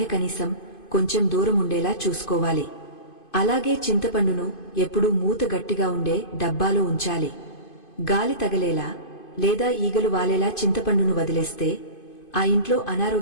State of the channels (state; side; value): late; right; 2.5 ms